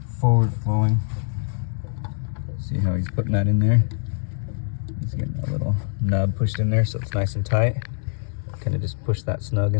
forward flowing. See how he's putting that in there? He's getting a little nub pushed in there so it's nice and tight. Kind of just push that snug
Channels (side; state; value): right; silent; digital silence